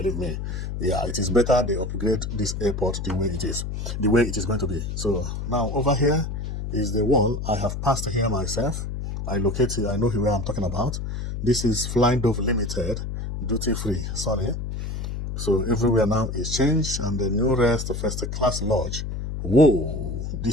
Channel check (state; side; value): noise; left; hum, 5 dB below the sound